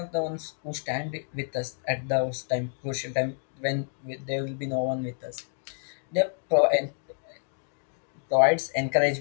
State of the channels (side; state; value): right; silent; digital silence